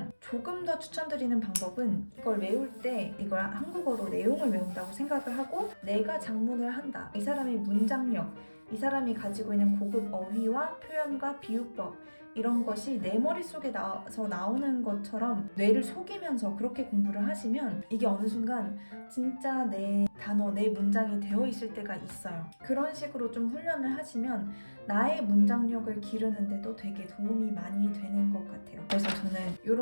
조금 더 추천드리는 방법은 이걸 외울 때 이걸 한국어로 내용을 외운다고 생각을 하고 내가 작문을 한다. 이 사람의 문장력, 이 사람이 가지고 있는 고급 어휘와 표현과 비유법 이런 것이 내 머릿속에 나오는 것처럼 뇌를 속이면서 그렇게 공부를 하시면 이게 어느 순간 진짜 내 단어, 내 문장이 되어 있을 때가 있어요. 그런 식으로 좀 훈련을 하시면 나의 문장력을 기르는데도 되게 도움이 많이 되는 것 같아요. 그래서 저는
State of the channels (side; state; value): both; inverted; correlation -1.00